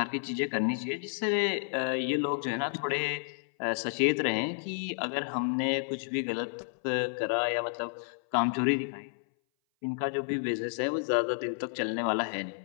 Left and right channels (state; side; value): silent; right; 57 dB below the other